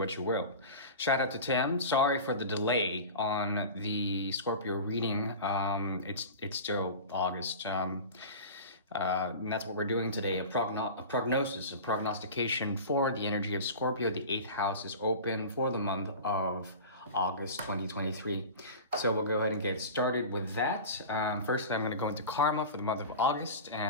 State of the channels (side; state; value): both; inverted; correlation -0.32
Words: you will. Shout out to Tim. Sorry for the delay on the Scorpio reading. It's still August. And that's what we're doing today, a prognosis, a prognostication for the energy of Scorpio. The 8th house is open for the month of August 2023. So we'll go ahead and get started with that. First, I'm going to go into karma for the month of August,